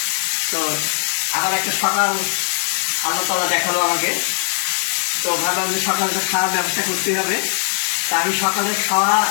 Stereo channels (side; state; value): right; silent; digital silence